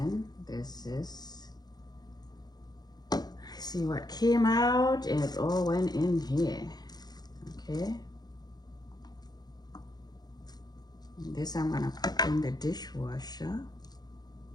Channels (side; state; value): right; late; 0.19 ms